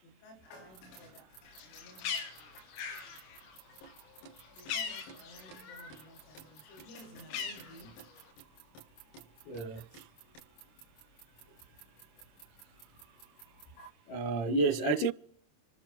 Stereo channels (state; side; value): late; right; 27 ms